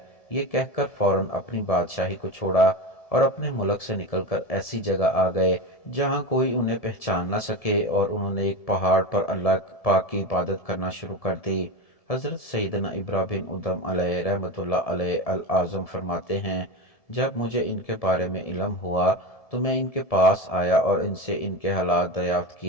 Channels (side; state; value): right; late; 1.7 ms